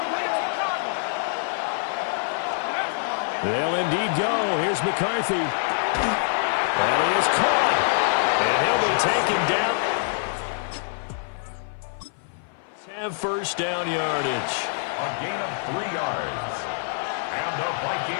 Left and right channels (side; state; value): right; silent; 56 dB below the other